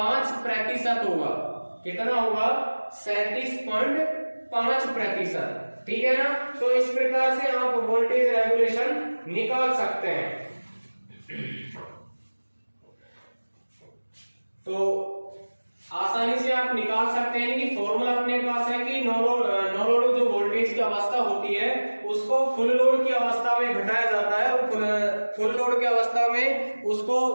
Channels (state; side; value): inverted; both; correlation -1.00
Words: होगा। कितना होगा 37.5%, ठीक है ना। तो इस प्रकार से आप वोल्टेज रेगुलेशन निकाल सकते हैं। तो आसानी से आप निकाल सकते हैं कि फॉर्मूला अपने पास है कि नो लोड जो वोल्टेज की अवस्था होती है उसको फुल लोड की अवस्था में घटाया जाता है, और फुल लोड की अवस्था में